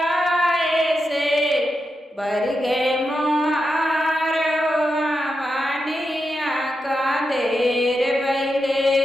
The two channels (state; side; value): normal; both; correlation 0.87